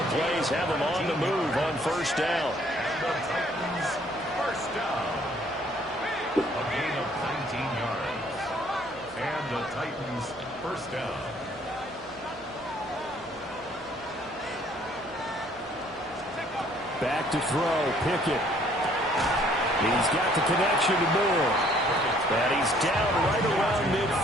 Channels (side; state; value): right; noise; hum, 25 dB below the sound